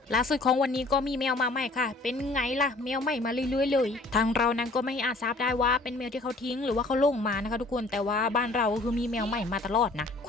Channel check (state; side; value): quieter; right; 3.1 dB